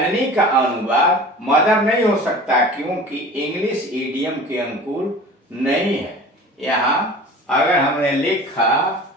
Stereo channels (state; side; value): normal; both; correlation 0.40